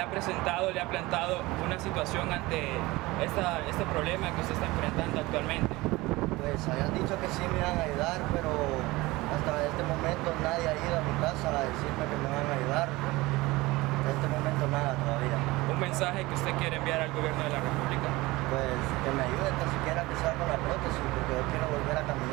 ha presentado, le ha plantado una situación ante este problema que usted está enfrentando actualmente? Pues habían dicho que sí me iban a ayudar, pero hasta este momento nadie ha ido a mi casa a decirme que me van a ayudar. En este momento nada todavía. ¿Un mensaje que usted quiere enviar al gobierno de la República? Pues que me ayuden tan siquiera que sea con la prótesis, porque yo quiero volver a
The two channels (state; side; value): quieter; left; 20.8 dB